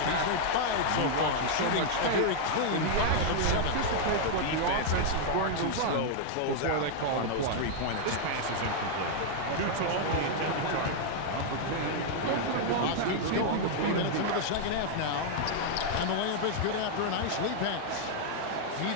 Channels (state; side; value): different; both; correlation -0.01